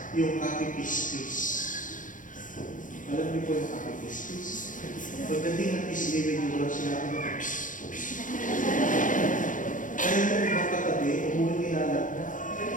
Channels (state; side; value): late; right; 0.38 ms